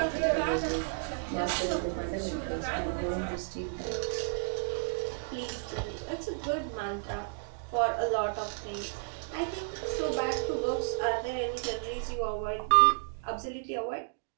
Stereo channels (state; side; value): silent; left; digital silence